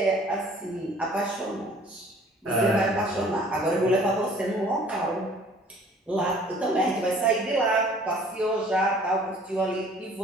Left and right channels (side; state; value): both; normal; correlation 0.53